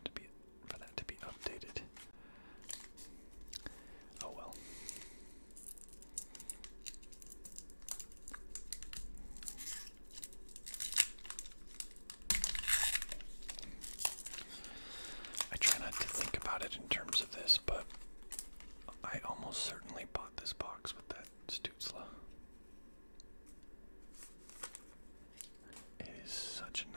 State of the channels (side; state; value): both; inverted; correlation -1.00